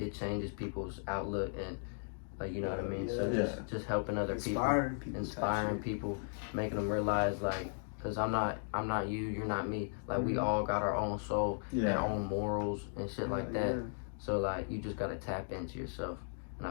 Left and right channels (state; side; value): silent; right; digital silence